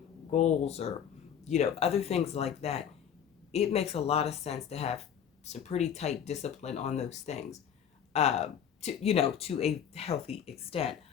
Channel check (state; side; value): quieter; right; 8.6 dB